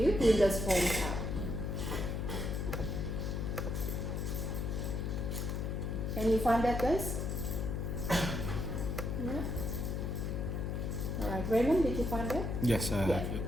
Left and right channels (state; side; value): noise; left; hum, 1 dB below the sound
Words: you Windows Form app. Can you find that, guys? Yeah. All right, Raymond, did you find that? Yes, I have it.